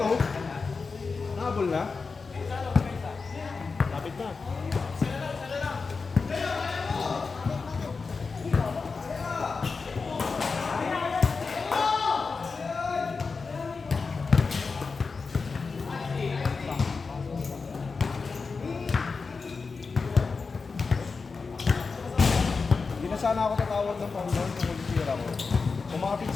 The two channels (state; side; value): quieter; right; 4.6 dB